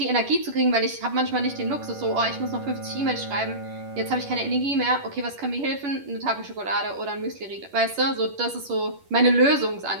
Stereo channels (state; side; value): late; left; 11 ms